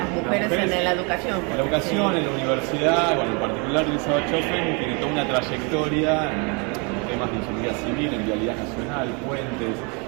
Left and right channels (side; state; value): left; quieter; 32.7 dB